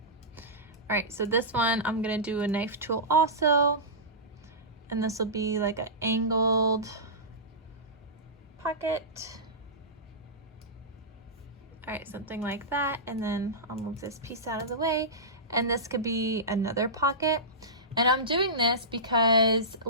All right, so this one, I'm gonna do a knife tool also. And this will be like an angled pocket. All right, something like that. And then I'll move this piece out of the way. And this could be another pocket. And I'm doing this because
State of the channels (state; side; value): normal; both; correlation -0.18